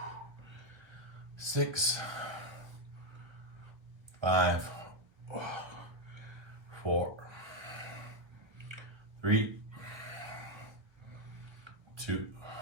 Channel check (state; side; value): late; left; 1.5 ms